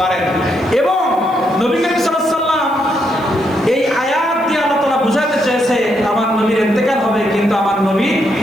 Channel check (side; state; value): right; noise; hiss, 27 dB below the sound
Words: পারেন। এবং নবী করিম সাল্লাল্লাহু আলাইহি ওয়াসাল্লাম এই আয়াত দিয়ে আল্লাহ তাআলা বুঝাতে চেয়েছে আমার নবীর ইন্তেকাল হবে, কিন্তু আমার নবী